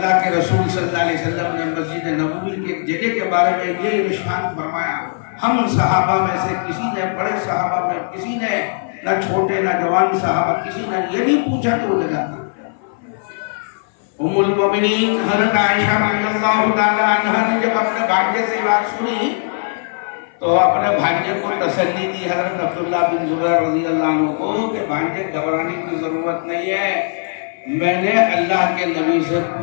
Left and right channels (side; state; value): right; silent; 59 dB below the other